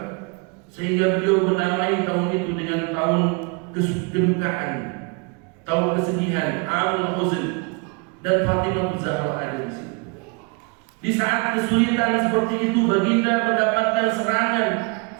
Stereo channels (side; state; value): left; quieter; 32.5 dB